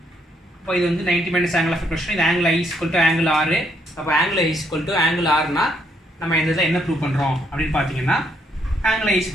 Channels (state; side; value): normal; both; correlation 0.72